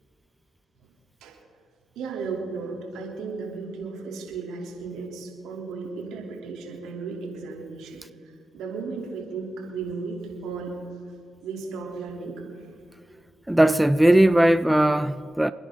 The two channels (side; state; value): both; normal; correlation 0.95